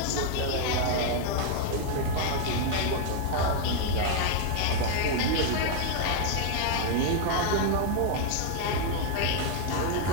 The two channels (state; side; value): different; both; correlation 0.00